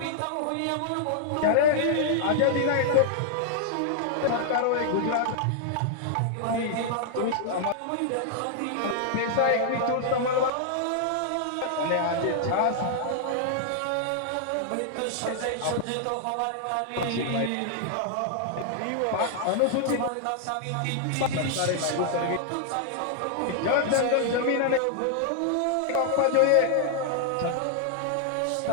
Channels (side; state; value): both; different; correlation -0.01